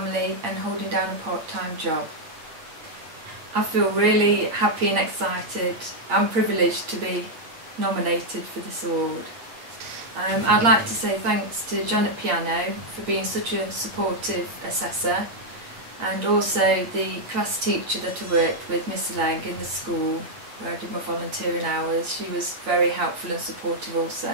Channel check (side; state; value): left; late; 8.5 ms